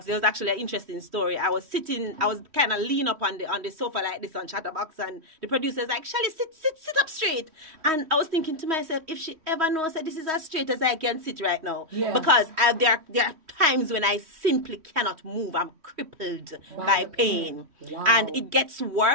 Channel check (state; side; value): late; left; 3.1 ms